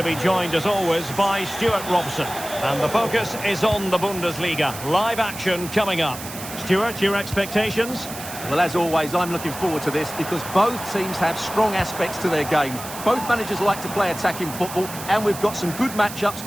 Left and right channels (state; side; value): noise; right; hiss, 11 dB below the sound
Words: be joined as always by Stuart Robson. And the focus is on the Bundesliga. Live action coming up. Stuart, your expectations? Well, as always, I'm looking forward to this because both teams have strong aspects to their game. Both managers like to play attacking football, and we've got some good matchups